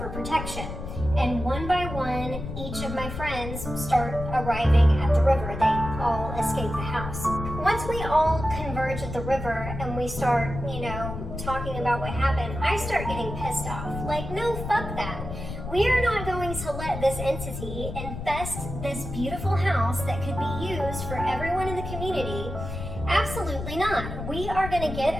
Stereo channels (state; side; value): noise; left; rumble, 7 dB below the sound